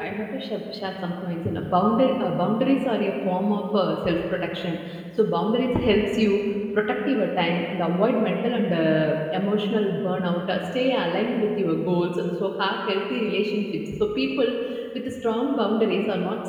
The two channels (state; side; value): identical; both; correlation 1.00